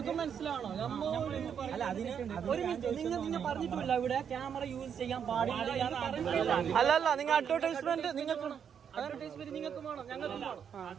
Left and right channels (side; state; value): left; quieter; 7.8 dB